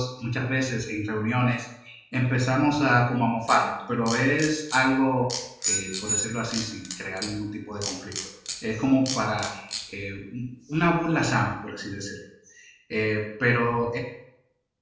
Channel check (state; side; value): identical; both; correlation 1.00